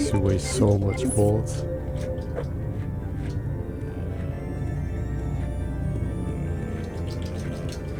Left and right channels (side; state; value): both; identical; correlation 1.00